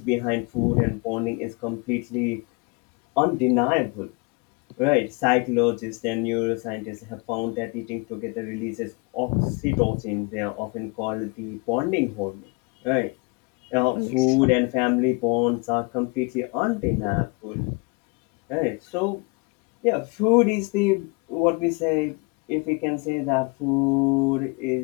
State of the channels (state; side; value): quieter; right; 29.4 dB